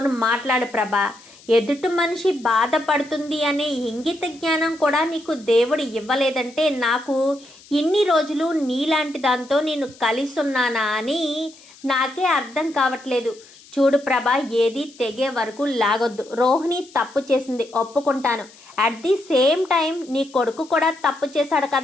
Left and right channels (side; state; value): left; noise; hiss, 24 dB below the sound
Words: మాట్లాడు ప్రభా. ఎదుటి మనిషి బాధపడుతుంది అనే ఇంగిత జ్ఞానం కూడా నీకు దేవుడు ఇవ్వలేదంటే నాకు ఇన్ని రోజులు నీలాంటి దాంతో నేను కలిసి ఉన్నానా అని నాకే అర్థం కావట్లేదు. చూడు ప్రభా, ఏది తెగే వరకు లాగొద్దు. రోహిణి తప్పు చేసింది, ఒప్పుకుంటాను. అట్ ది సేమ్ టైం నీ కొడుకు కూడా తప్పు చేశాడు